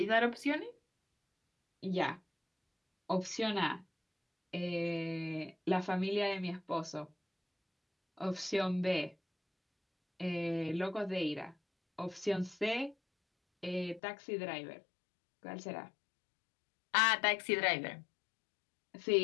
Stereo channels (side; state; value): right; drops out; at 14.0 s